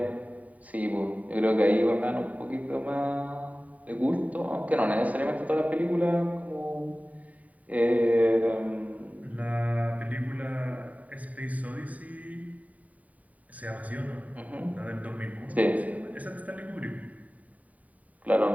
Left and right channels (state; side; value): late; left; 0.071 ms